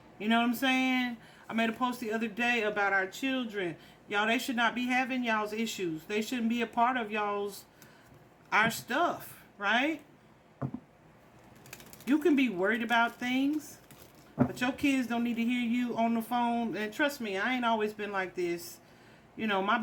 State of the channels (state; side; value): identical; both; correlation 1.00